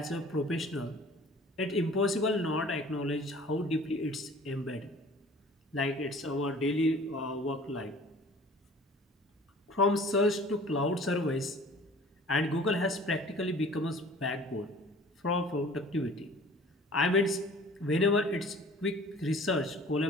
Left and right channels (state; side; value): normal; both; correlation 0.48